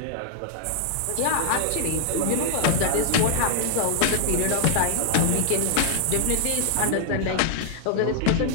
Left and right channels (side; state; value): both; different; correlation -0.01